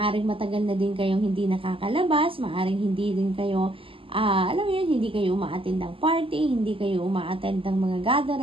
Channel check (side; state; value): left; late; 0.26 ms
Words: matagal na din kayong hindi nakakalabas, maaaring hindi din kayo alam mo yun, hindi kayo umaattend ng party, hindi kayo umaattend ng mga